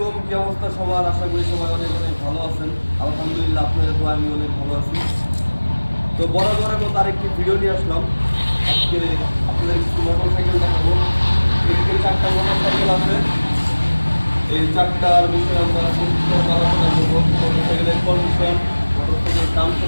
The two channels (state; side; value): inverted; both; correlation -1.00